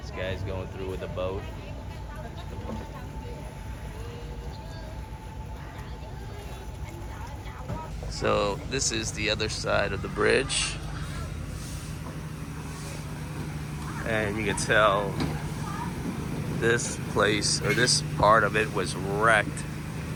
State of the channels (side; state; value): both; identical; correlation 1.00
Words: guy's going through with a boat. So this is the other side of the bridge, and you can tell this place, or this part of it, was wrecked